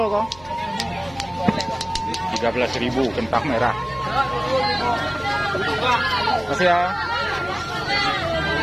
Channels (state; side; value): noise; right; hum, 23 dB below the sound